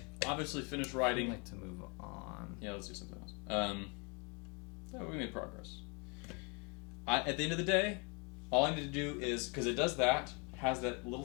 obviously, finish I'd writing. like to move on. Yeah, let's do something else. Yeah, we made progress. At the end of the day, all I need to do is, because it does that, has that little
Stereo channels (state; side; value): quieter; right; 33.4 dB